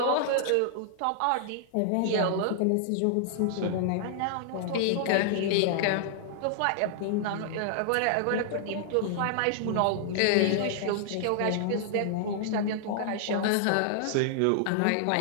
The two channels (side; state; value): both; different; correlation -0.01